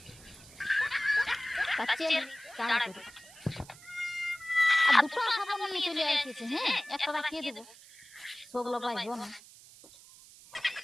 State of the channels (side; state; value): right; noise; hiss, 21 dB below the sound